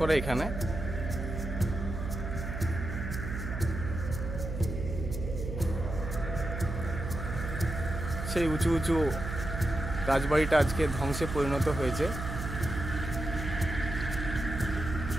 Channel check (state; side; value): noise; right; hum, 5 dB below the sound